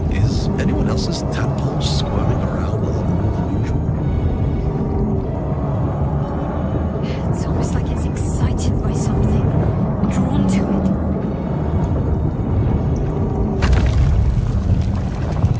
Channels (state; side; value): identical; both; correlation 1.00